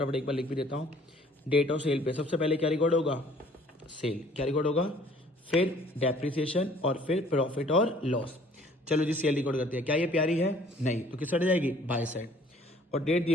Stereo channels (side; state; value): both; normal; correlation 0.56